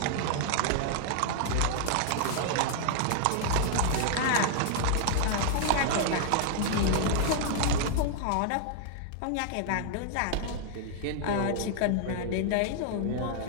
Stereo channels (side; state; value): both; different; correlation 0.00